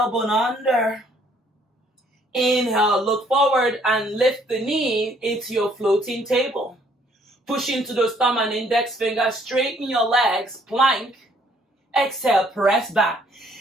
under. Inhale, look forward and lift the knee into your floating table. Push into those thumb and index fingers. Straighten your legs. Plank. Exhale, press back.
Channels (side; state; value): both; normal; correlation 0.64